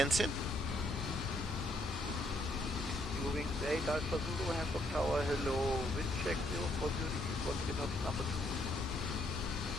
soon. Moving 8 Alpha Zulu, Hamburg Tower, hello, wind check 040 degrees, 1 knots, number 2.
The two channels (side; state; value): both; normal; correlation 0.71